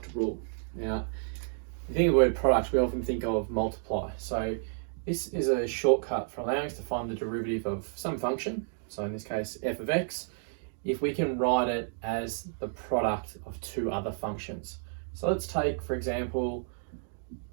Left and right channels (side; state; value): left; silent; digital silence